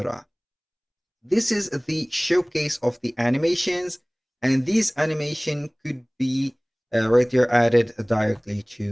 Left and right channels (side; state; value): both; identical; correlation 1.00